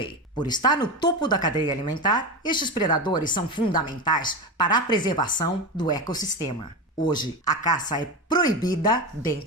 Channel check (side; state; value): both; normal; correlation 0.20